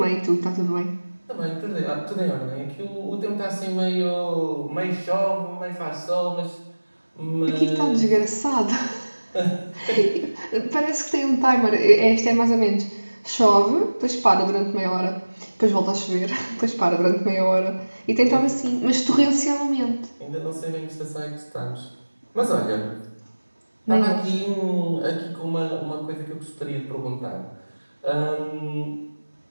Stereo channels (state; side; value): inverted; both; correlation -1.00